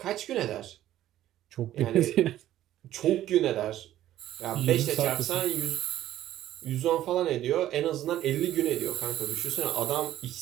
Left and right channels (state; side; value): quieter; left; 13.0 dB